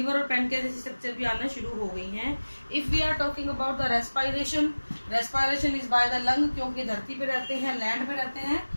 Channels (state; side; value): inverted; both; correlation -1.00